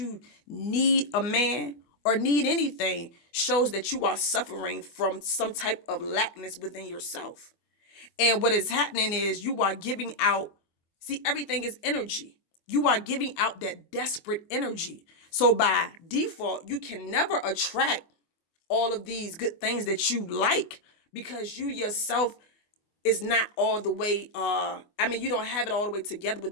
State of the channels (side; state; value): right; late; 24 ms